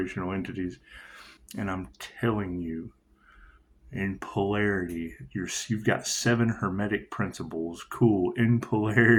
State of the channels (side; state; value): both; identical; correlation 1.00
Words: entities. And I'm telling you, in polarity, you've got 7 hermetic principles. Cool. In